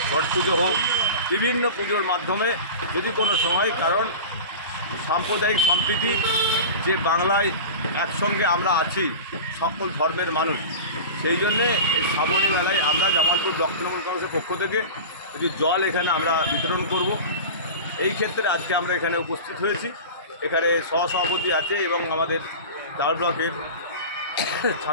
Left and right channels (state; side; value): inverted; both; correlation -0.31